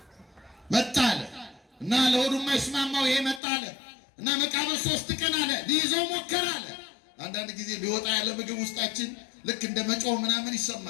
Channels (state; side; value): drops out; right; at 3.4 s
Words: መጣ አለ እና ለሆዱ የማይስማማው ይሄ መጣ አለ እና መቃብር 3 ቀን አለ ሊይዘው ሞከረ አለ። አንዳንድ ጊዜ ሊወጣ ያለ ምግብ ውስጣችን ልክ እንደ መጮህ ምናምን